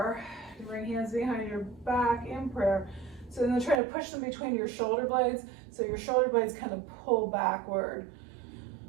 you bring hands behind your back in prayer. So then try to push them between your shoulder blades so your shoulder blades kind of pull backward.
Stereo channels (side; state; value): left; drops out; at 3.8 s